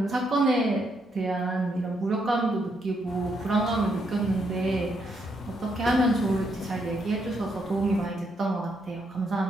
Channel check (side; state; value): both; normal; correlation 0.76